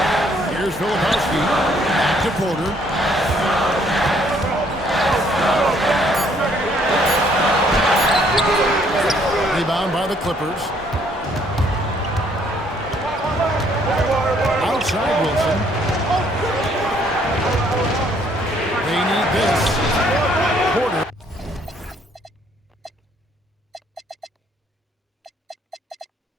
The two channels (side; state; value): both; normal; correlation 0.65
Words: Here's Filipowski. Back to Porter. Rebound by the Clippers. Outside Wilson. They need this. Porter.